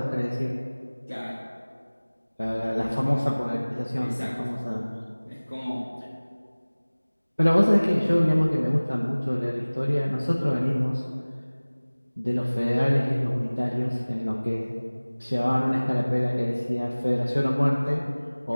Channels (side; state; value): both; inverted; correlation -1.00